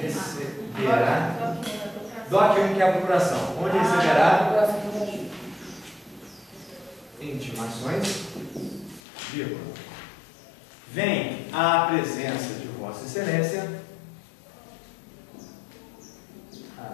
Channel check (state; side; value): drops out; right; at 9.0 s